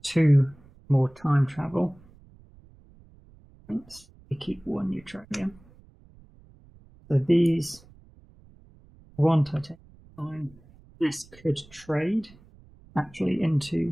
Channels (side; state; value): right; noise; rumble, 26 dB below the sound